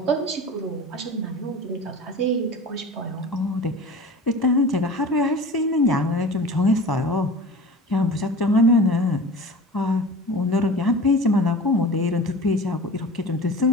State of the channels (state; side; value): normal; both; correlation 0.36